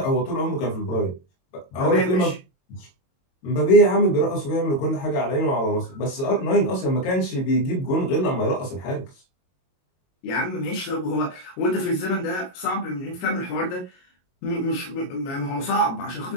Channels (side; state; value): right; late; 22 ms